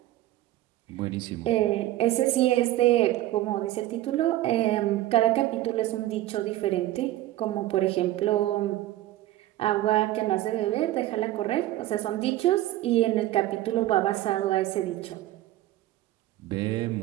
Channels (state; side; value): quieter; left; 15.2 dB